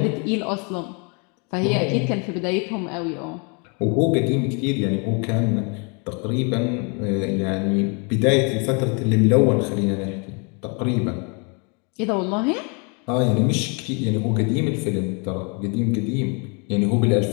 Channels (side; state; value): right; quieter; 34.4 dB